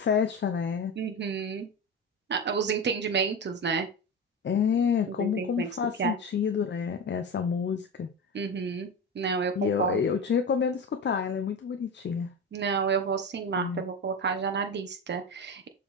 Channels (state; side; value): normal; both; correlation 0.23